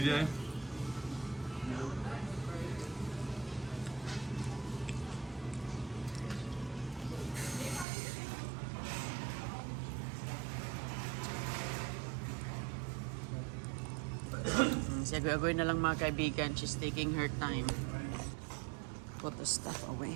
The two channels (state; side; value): drops out; left; at 7.9 s